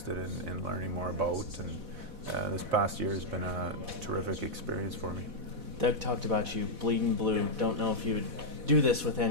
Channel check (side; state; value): left; late; 4.1 ms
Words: in learning more about, and this past year has been a terrific experience for me. Doug talked about you bleeding blue. Don't know if you would do this with